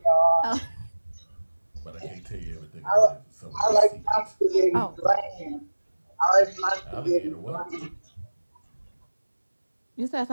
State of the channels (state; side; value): inverted; both; correlation -1.00